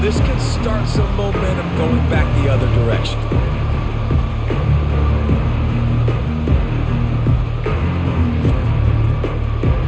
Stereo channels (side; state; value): both; identical; correlation 1.00